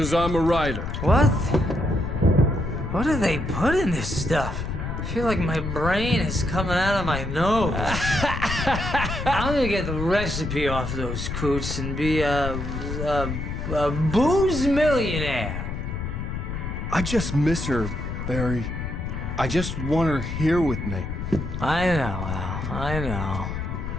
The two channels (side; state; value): left; noise; rumble, 5 dB below the sound